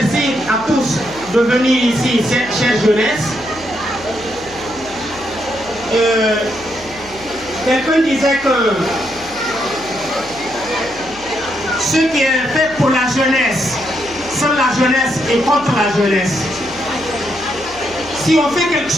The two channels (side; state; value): left; noise; hum, 21 dB below the sound